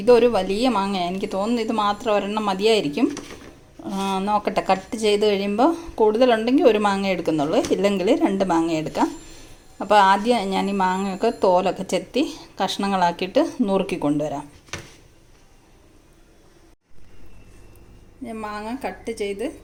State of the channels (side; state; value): both; identical; correlation 1.00